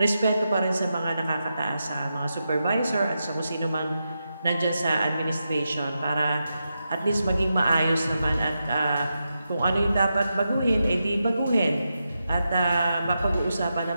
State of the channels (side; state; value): both; inverted; correlation -0.88